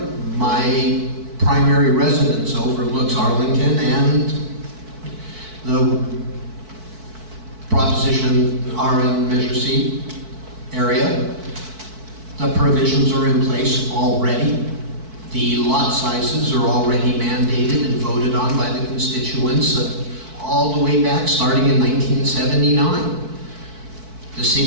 my primary residence overlooks Arlington and the Proposition RN Measure C area. The provisions are in place already. The lot sizes are already mandated and voted on by the constituents all the way back, starting in 1979. The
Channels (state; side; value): late; left; 4.6 ms